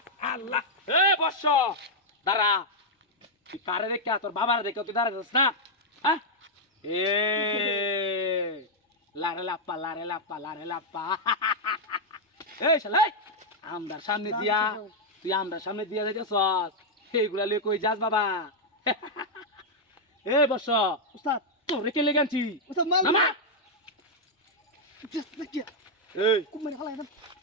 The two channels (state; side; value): normal; both; correlation -0.03